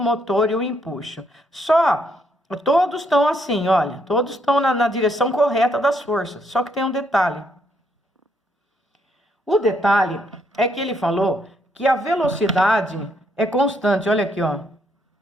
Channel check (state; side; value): normal; both; correlation 0.73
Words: e o empuxo. Todos estão assim, olha, todos estão na direção correta das forças, só que tem um detalhe. O detalhe é que ele falou que a velocidade é constante, olha aqui, ó,